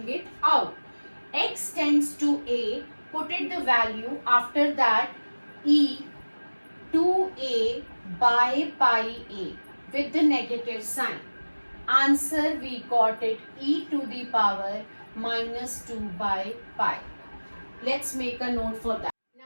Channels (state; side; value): inverted; both; correlation -1.00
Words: it out. X tends to a, put it the value, after that e 2a by pi a with the negative sign. Answer, we got it, e to the power minus 2 by pi. Let's make a note for that.